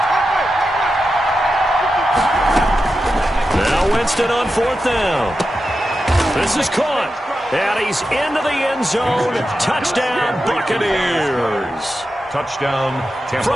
Now Winston on 4th down. This is caught. And he's into the end zone. Touchdown, Buccaneers. Touchdown, Tampa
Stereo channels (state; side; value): normal; both; correlation 0.90